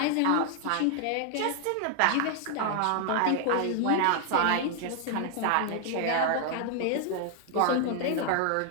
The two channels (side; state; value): both; different; correlation 0.00